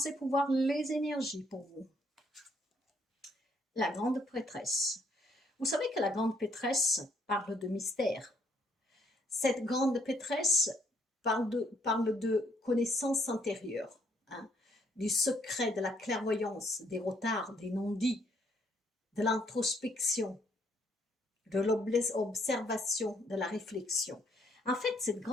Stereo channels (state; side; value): normal; both; correlation 0.69